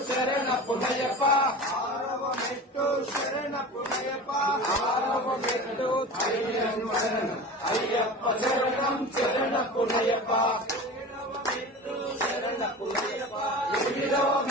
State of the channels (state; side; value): normal; both; correlation 0.33